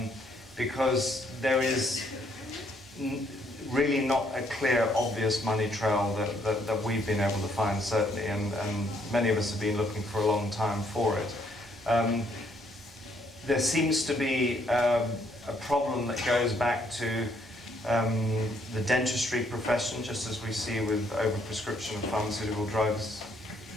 Because there is really not a clear, obvious money trail that we've been able to find, certainly, and many of us have been looking for a long time for it. There seems to be a problem that goes back to the dentistry profession, just as we see with overprescription of pharmaceutical drugs,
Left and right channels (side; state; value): both; normal; correlation 0.69